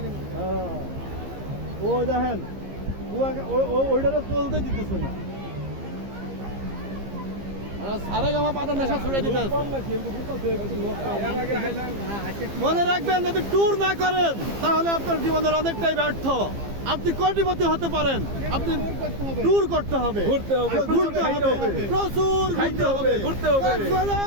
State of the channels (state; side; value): late; left; 15 ms